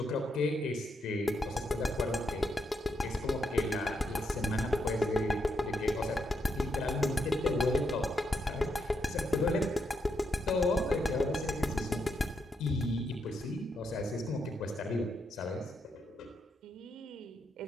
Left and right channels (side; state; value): both; normal; correlation 0.80